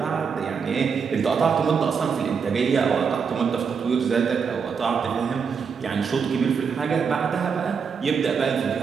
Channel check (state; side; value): quieter; left; 6.1 dB